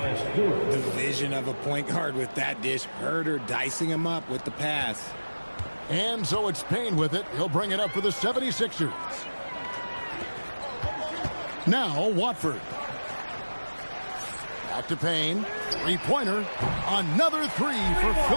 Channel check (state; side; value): inverted; both; correlation -1.00